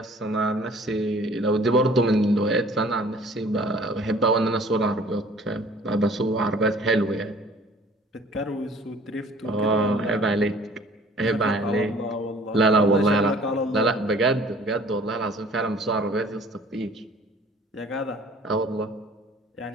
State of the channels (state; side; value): normal; both; correlation 0.52